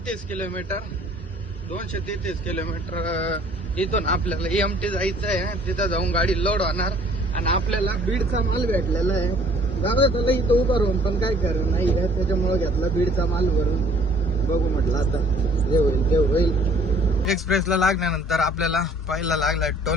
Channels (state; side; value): normal; both; correlation 0.56